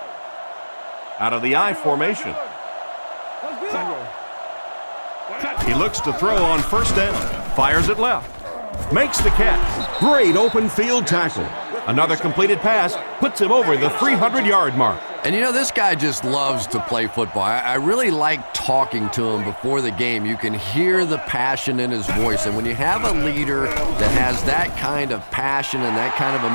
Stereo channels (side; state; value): both; inverted; correlation -1.00